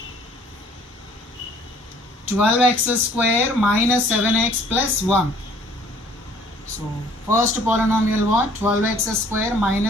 12x square minus 7x plus 1. So first polynomial what? 12x square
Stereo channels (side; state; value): both; normal; correlation 0.56